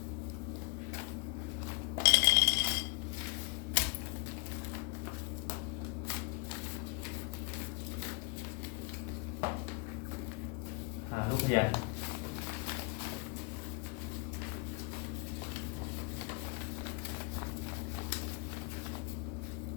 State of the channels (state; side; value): quieter; right; 31.8 dB